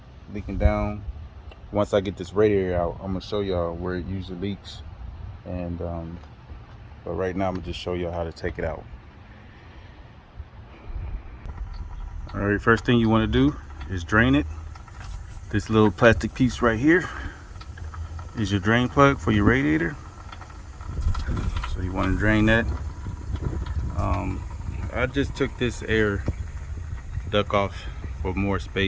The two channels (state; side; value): identical; both; correlation 1.00